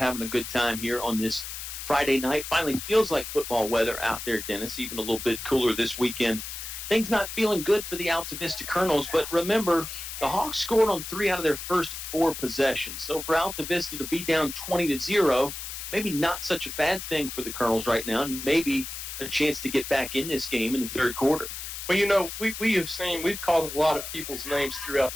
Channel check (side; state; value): left; noise; hiss, 8 dB below the sound